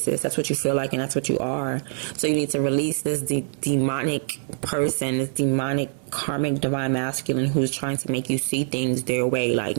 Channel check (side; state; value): left; silent; 62 dB below the other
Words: That's what you feel like, and that's what you are. So you need to release this demonic person, this demonic karmic divine masculine who's trying to make you see things their way. Like,